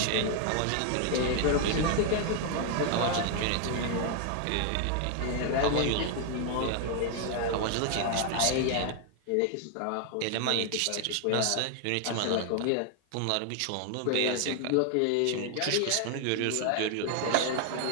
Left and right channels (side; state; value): both; different; correlation 0.00